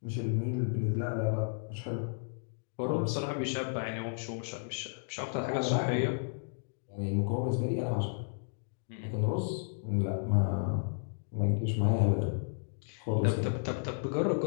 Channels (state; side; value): silent; right; digital silence